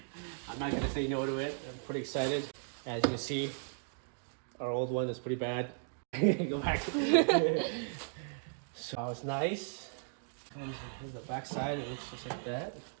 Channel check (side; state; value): left; silent; digital silence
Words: I'm not gonna say no to it. I'm pretty excited. As you can see, our old one is pretty bad. Go back. So it's nice. Here's the back side. It looks just like that.